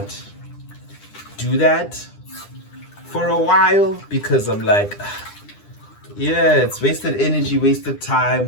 do that for a while because I'm like, yeah, it's wasted energy, wasted time,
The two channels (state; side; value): late; right; 9.9 ms